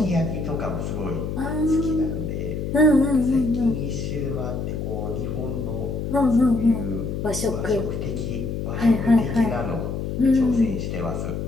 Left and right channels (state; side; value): noise; left; hum, 4 dB below the sound